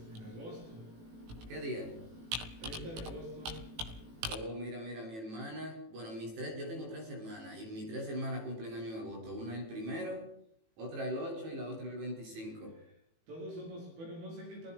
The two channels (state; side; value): late; left; 18 ms